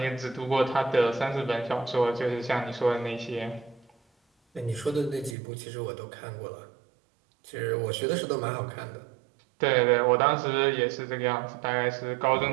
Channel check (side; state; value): left; drops out; at 5.4 s